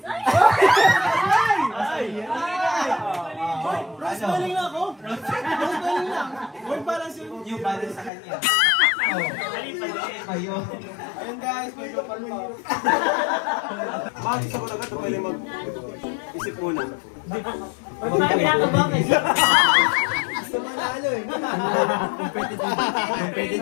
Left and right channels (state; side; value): drops out; right; at 8.1 s